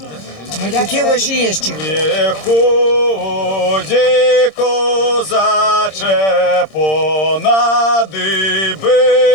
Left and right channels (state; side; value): late; right; 26 ms